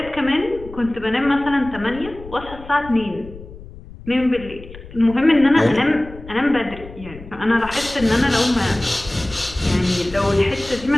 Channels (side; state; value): left; noise; rumble, 16 dB below the sound